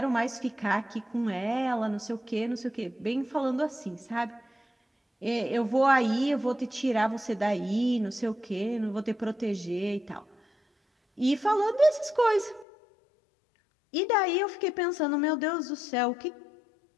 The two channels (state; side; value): drops out; right; at 12.7 s